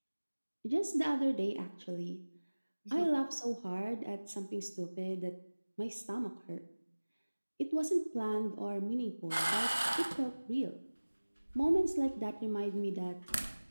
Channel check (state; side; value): inverted; both; correlation -1.00